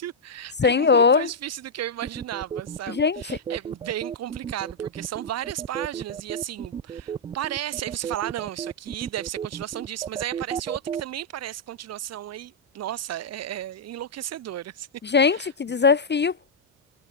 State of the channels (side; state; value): both; normal; correlation -0.06